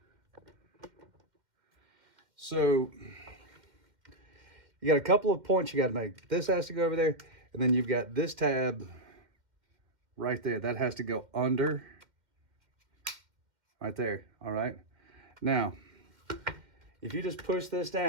So you got a couple of points you got to make. This has to go over there, and then you've got this tab right there. That has to go under, right there, all right? Now, if you just push this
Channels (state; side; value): late; left; 2.2 ms